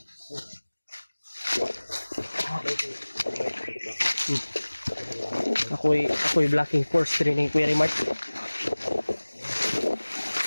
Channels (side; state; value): both; inverted; correlation -1.00